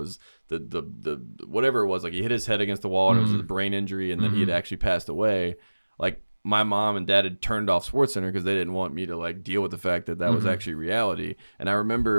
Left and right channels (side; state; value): both; inverted; correlation -1.00